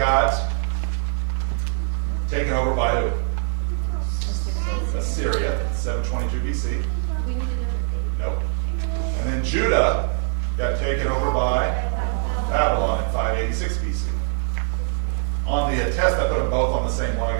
taken over by who? Assyria, 722 BC. We need to know the date. Nope. And then Judah got taken over by Babylon in 586 BC. On the test, I put them both on the same one. I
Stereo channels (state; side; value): silent; left; digital silence